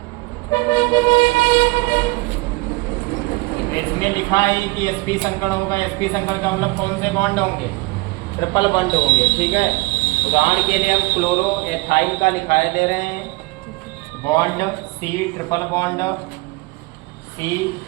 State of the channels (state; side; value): quieter; left; 24.3 dB